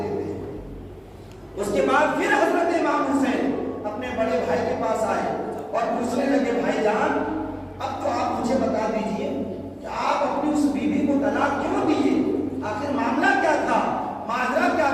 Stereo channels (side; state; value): both; identical; correlation 1.00